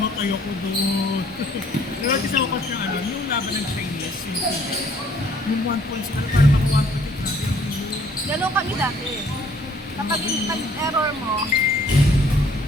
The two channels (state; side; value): normal; both; correlation 0.60